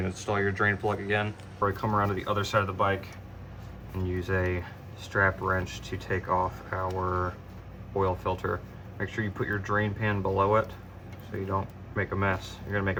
install your drain plug again. Or come around to the other side of the bike and use a strap wrench to take off our oil filter. Make sure you put your drain pan below it so you don't make a mess. You're gonna make a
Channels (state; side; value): identical; both; correlation 1.00